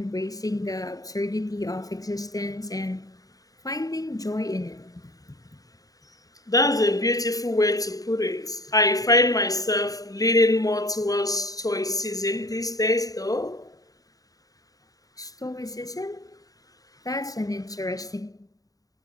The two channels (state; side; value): late; right; 0.18 ms